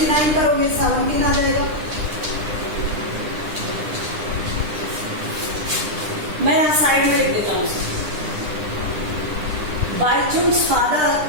करोगे 17 आ जाएगा. मैं यहां साइड में लिख देता हूं. बाईचुंग्स फादर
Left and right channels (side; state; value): left; late; 9.8 ms